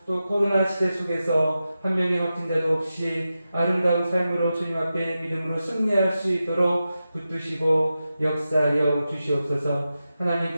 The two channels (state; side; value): inverted; both; correlation -0.92